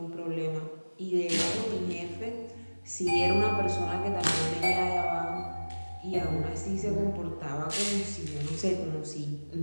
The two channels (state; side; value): inverted; both; correlation -1.00